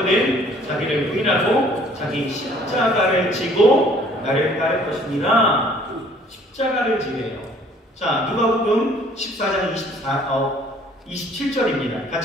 자기를 부인하고 자기 십자가를 지고 나를 따를 것이니라. 십자가를 지래요. 자, 누가복음 14장 27절입니다.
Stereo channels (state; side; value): normal; both; correlation 0.57